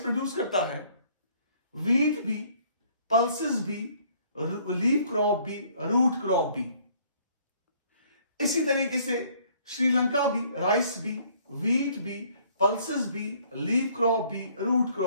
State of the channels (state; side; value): inverted; both; correlation -0.61